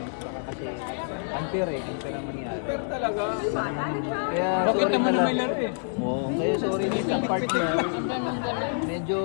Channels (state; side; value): silent; right; digital silence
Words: Baka kasi unfair eh, unfair ang mangyari. Pero talaga. Kaya Bakit sorry naman na na may lang. laro eh? Oo, kaya sorry din sa partner. Ang ganun-ganun. Medyo